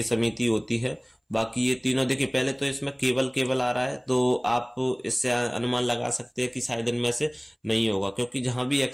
समिति होती है। बाकी ये तीनों, देखिए पहले तो इसमें केवल आ रहा है, तो आप इससे अनुमान लगा सकते हैं कि शायद इनमें से नहीं होगा, क्योंकि जहां भी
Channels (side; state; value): both; identical; correlation 1.00